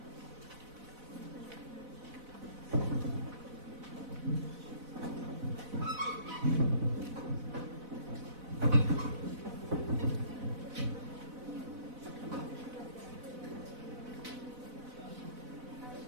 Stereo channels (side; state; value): left; late; 4.0 ms